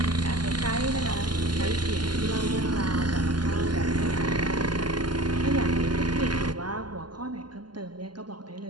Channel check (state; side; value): late; left; 0.71 ms